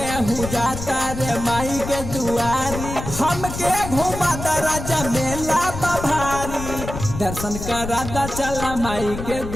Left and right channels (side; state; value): left; noise; rumble, 8 dB below the sound